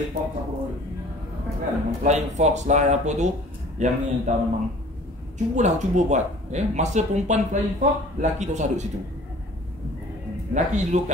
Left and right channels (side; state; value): both; normal; correlation 0.48